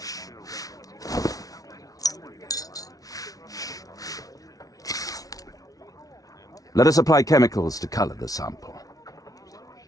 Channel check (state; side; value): late; right; 0.18 ms